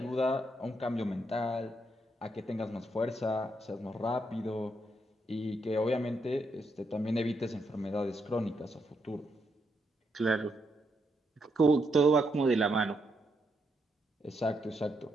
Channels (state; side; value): normal; both; correlation 0.78